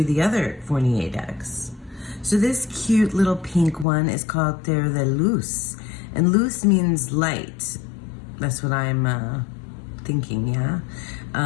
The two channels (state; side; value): drops out; right; at 3.9 s